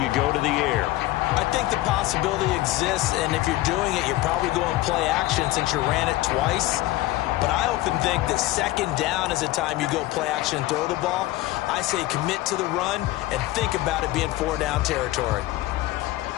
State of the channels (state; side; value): quieter; right; 17.1 dB